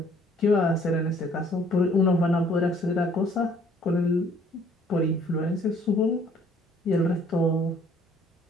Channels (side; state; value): both; normal; correlation 0.59